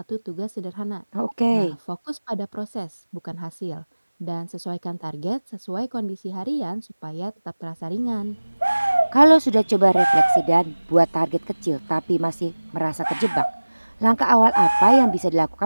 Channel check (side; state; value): both; inverted; correlation -1.00